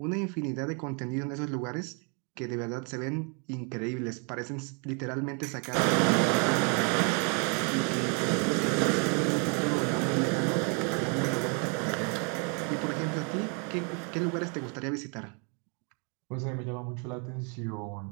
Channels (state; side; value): quieter; left; 36.4 dB